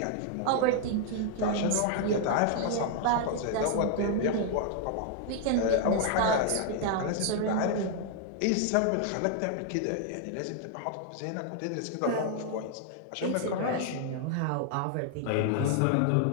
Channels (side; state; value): both; different; correlation 0.00